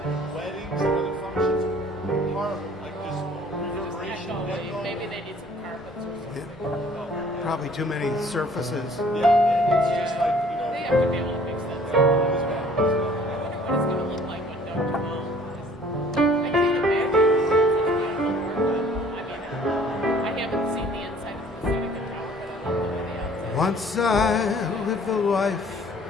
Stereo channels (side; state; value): both; normal; correlation 0.54